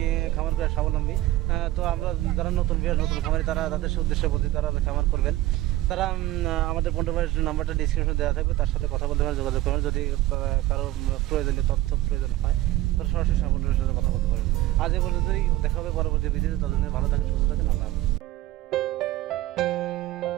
খামার করে স্বাবলম্বী। তো আমরা যারা নতুন নতুন খামারি তারা তাদের উদ্দেশ্যে বলছি তারা খামার করবেন। তারা আমাদের পন্টু ভাইয়ের নাম্বারটা ডিসক্রিপশনে দেওয়া থাকবে, তার সাথে কথা বলতে পারেন, যোগাযোগ করবেন। যদি কারো প্রয়োজনীয় তথ্য প্রয়োজন হয় তাহলে সরাসরি সাবলম্বীর সাথে কথা বলতে পারেন। আজ এ পর্যন্তই, দেখা হবে পরবর্তী ভিডিওতে। ততদিন ভালো থাকেন, সুস্থ থাকেন, আল্লাহ হাফেজ।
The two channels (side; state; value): left; quieter; 16.0 dB